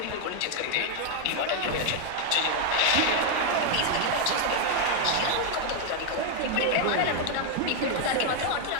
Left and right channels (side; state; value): both; different; correlation 0.00